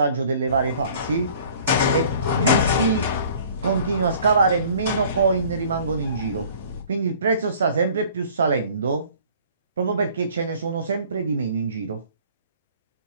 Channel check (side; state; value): both; inverted; correlation -0.52